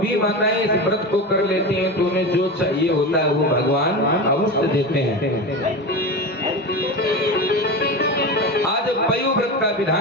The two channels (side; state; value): both; normal; correlation 0.24